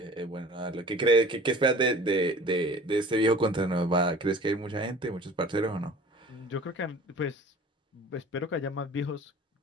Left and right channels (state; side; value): normal; both; correlation 0.45